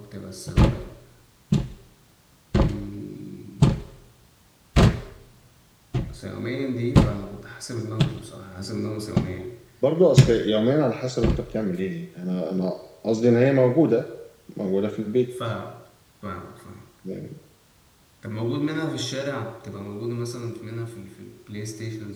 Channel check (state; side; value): identical; both; correlation 1.00